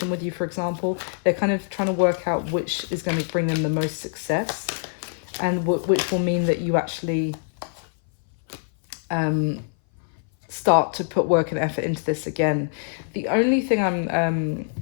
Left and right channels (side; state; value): right; silent; 60 dB below the other